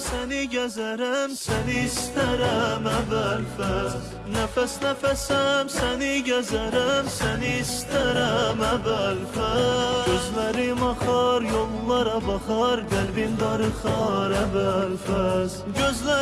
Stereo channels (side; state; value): both; identical; correlation 1.00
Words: gəzərəm, səni istərəm əvvəl-fəz. Nəfəs nəfəsəm səni gəzərəm, səni istərəm əvvəl-fəz. Gözlərim axar, yollara baxar, qəlbim darıxar əvvəl-fəz.